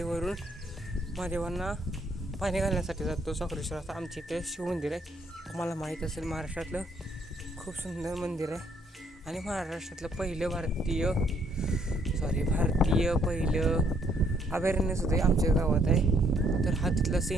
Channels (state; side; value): normal; both; correlation 0.68